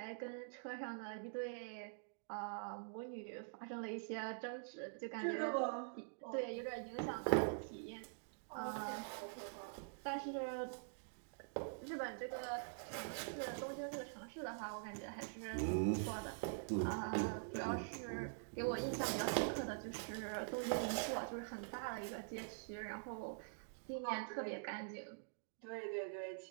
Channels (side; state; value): left; silent; digital silence